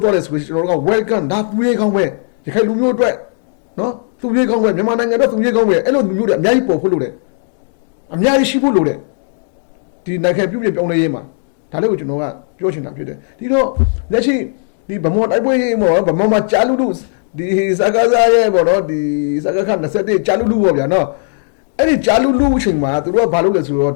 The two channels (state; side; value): silent; right; 64 dB below the other